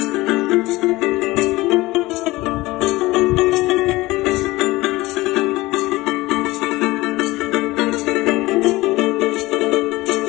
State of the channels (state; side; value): quieter; right; 19.7 dB